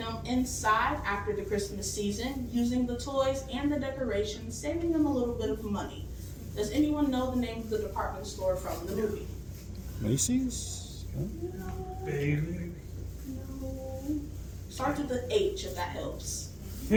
inside after the Christmas season, using the toys and the decorations, saving them a little bit of money. Does anyone know the name of the department store from the movie? Macy's? Bailey. No. Starts with the H, if that helps.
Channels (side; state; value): both; identical; correlation 1.00